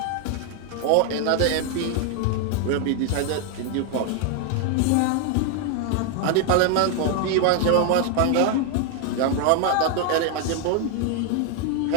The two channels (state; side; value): different; both; correlation 0.00